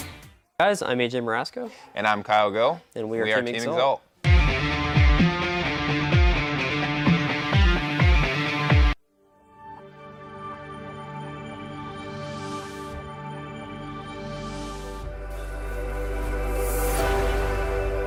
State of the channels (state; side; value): identical; both; correlation 1.00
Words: Guys, I'm AJ Marasco. And I'm Kyle Go. And we are Team Exalt.